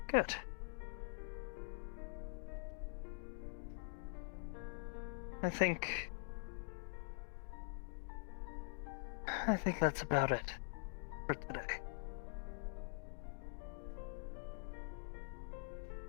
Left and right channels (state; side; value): silent; right; digital silence